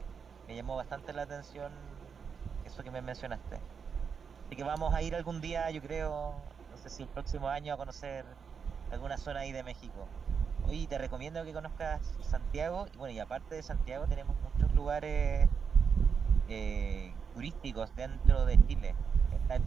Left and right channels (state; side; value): quieter; left; 6.3 dB